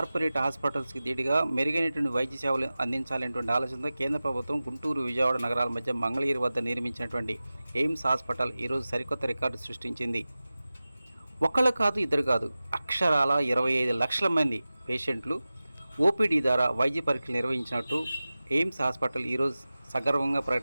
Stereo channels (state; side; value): inverted; both; correlation -0.96